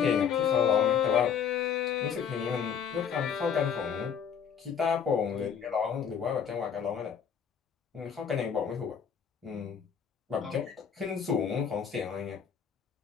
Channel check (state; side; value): quieter; right; 7.5 dB